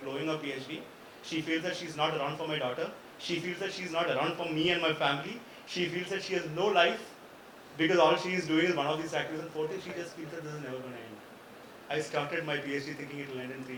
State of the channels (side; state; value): both; identical; correlation 1.00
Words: blowing her PhD. She feels that she's not around for my daughter. She feels that she's not around for me and my family. She feels that she has no life because all she is doing is one of these activities. And fourth thing, she just feels that this is never going to end. I started my PhD thinking it will end in 3